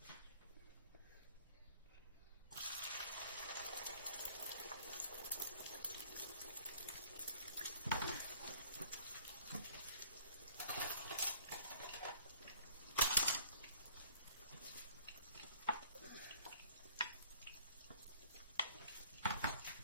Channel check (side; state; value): both; inverted; correlation -0.54